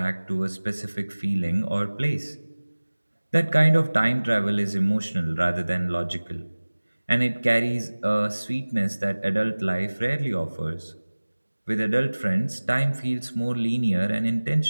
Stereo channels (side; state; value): both; inverted; correlation -1.00